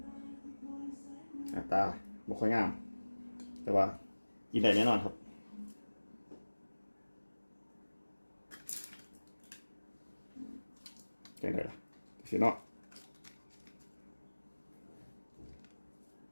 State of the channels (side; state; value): both; inverted; correlation -1.00